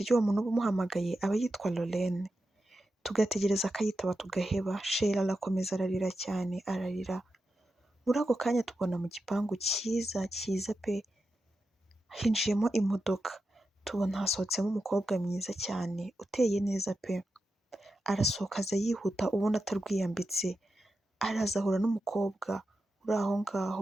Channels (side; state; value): both; normal; correlation 0.89